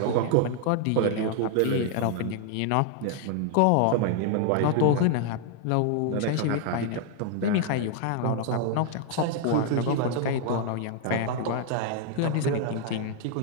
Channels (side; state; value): both; different; correlation 0.00